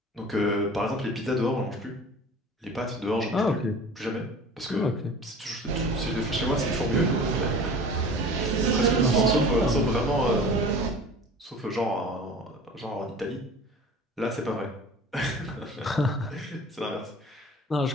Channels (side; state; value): both; normal; correlation 0.41